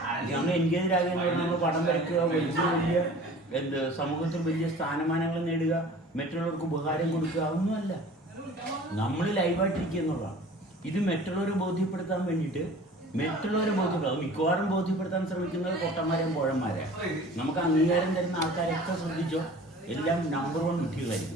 നമ്മൾ എൻഗേജ്ഡ് ആകുക എന്ന് പറഞ്ഞാൽ നമ്മൾ പടം വരയ്ക്കുക, വലിയ സമൂഹത്തിൽ വലിയ സ്ഥാനമാനങ്ങൾ നേടുക, മറ്റുള്ളവർക്ക് ഉപകാരം കൊടുക്കുക, അതൊന്നുമല്ല. നമ്മൾ ലൈവായിട്ടിരിക്കുക എന്നുള്ളതാണ്. ഇത് മറ്റുള്ളവരെ ബോധ്യപ്പെടുത്താൻ വേണ്ടിയിട്ട് മിക്കവാറും ബോധ്യപ്പെടുത്താൻ ശ്രമിക്കുന്നത് പൊട്ടന്മാരെയും പോഴന്മാരെ. നമുക്ക് അംഗീകാരം തരുന്ന ആൾക്കാരൊക്കെ ശ്രദ്ധിച്ചോ, എല്ലാം നമ്പർ 1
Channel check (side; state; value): both; normal; correlation 0.44